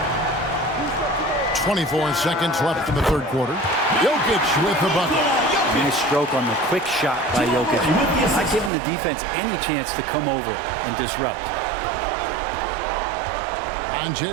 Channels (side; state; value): left; drops out; at 8.7 s